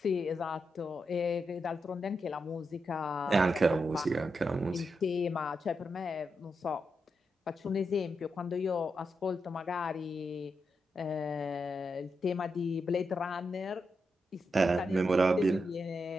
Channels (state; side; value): normal; both; correlation 0.85